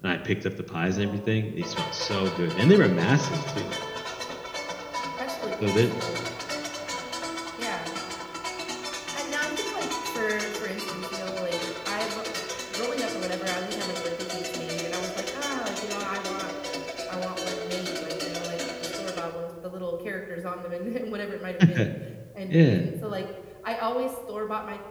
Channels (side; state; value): both; identical; correlation 1.00